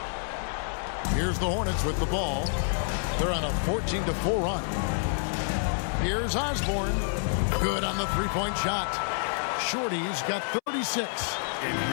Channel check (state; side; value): silent; right; 59 dB below the other